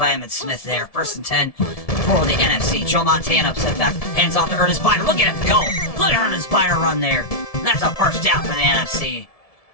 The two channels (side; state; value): right; late; 1.7 ms